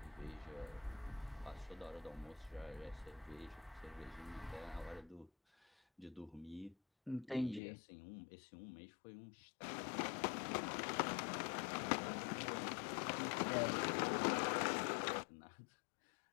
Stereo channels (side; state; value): right; drops out; at 7.6 s